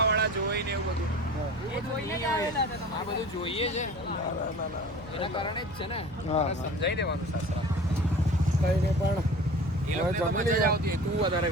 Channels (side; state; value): right; noise; hum, 18 dB below the sound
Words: વાળા જોઈ ને એવું બધું. એ જોઈને જ આવેલા હતા આ બધું જોઈએ છે એના કારણે જ છે ને. હા. સમજાઈ દેવાનું સાસરા કઈને પણ એ લોકોને તો મજા જ આવતી હોય. તું વધારે